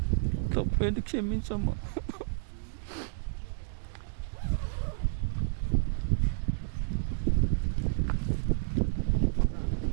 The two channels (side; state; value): left; silent; digital silence